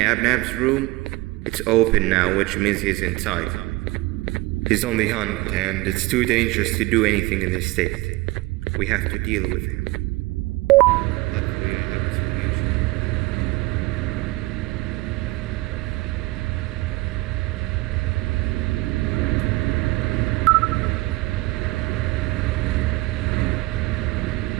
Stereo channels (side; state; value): left; quieter; 21.4 dB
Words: room? It's open now, which means he's inside. He's on the hunt, and it's too dangerous to do anything in this state. We have to deal with him. Luckily, I have a solution.